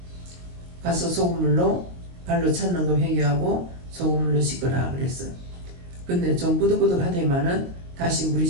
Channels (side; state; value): left; late; 22 ms